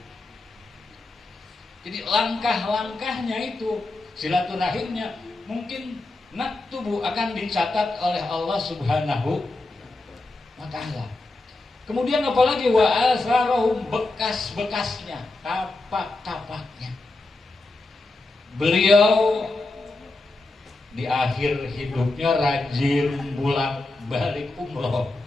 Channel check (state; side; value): quieter; right; 3.0 dB